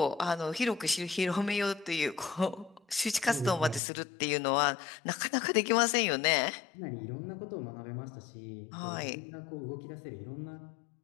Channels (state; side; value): drops out; right; at 3.8 s